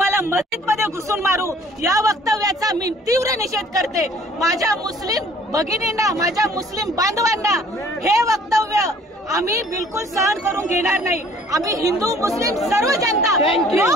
मस्जिदमध्ये घुसून मारू, या वक्तव्याचा मी तीव्र निषेध करते. माझ्या मुस्लिम भगिनींना, माझ्या मुस्लिम बांधवांना हे वक्तव्य आम्ही बिलकुल सहन करून घेणार नाही. आम्ही हिंदू मुस्लिम सर्व जनता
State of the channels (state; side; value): normal; both; correlation 0.55